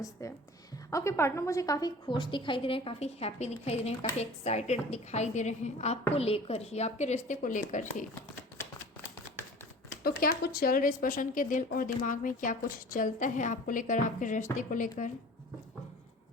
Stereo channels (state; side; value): normal; both; correlation 0.43